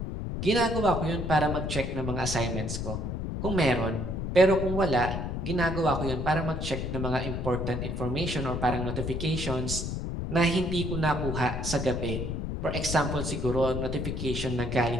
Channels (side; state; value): left; noise; rumble, 3 dB below the sound